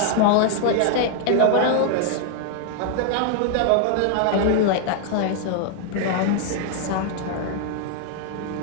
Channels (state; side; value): different; both; correlation 0.00